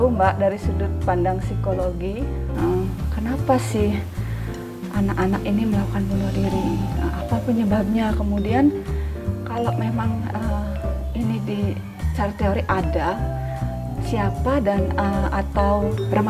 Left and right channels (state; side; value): identical; both; correlation 1.00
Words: Mbak, dari sudut pandang psikologi, kenapa sih anak-anak ini melakukan bunuh diri? Apa penyebabnya? Kemudian kalau memang ini di secara teori ada, siapa dan atau